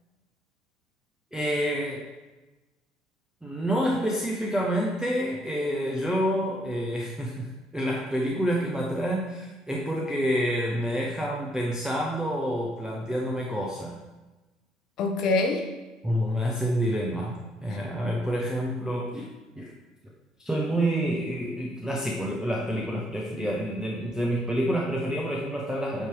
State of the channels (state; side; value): normal; both; correlation 0.71